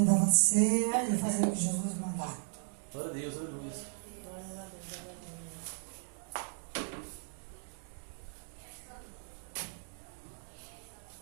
de ser e fazer o que Jesus mandar. Glória a Deus, aleluia.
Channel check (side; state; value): left; silent; 54 dB below the other